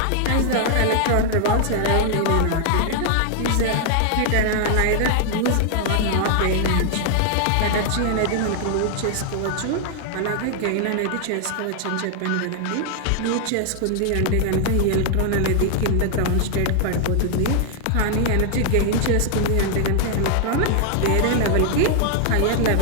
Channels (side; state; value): both; different; correlation 0.00